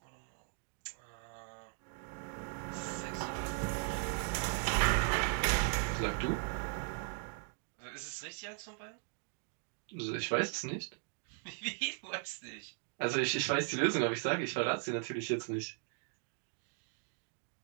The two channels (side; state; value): left; silent; 52 dB below the other